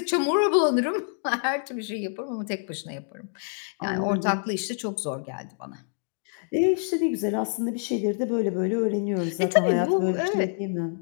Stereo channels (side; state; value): right; silent; 60 dB below the other